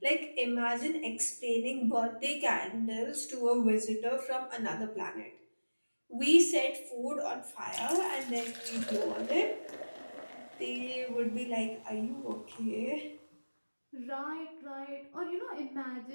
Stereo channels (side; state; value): both; inverted; correlation -1.00